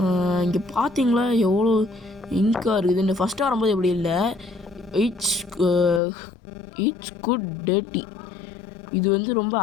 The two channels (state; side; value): drops out; right; at 6.0 s